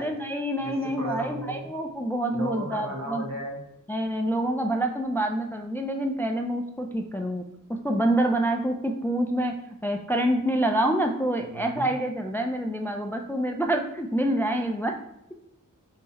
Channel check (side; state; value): both; normal; correlation 0.68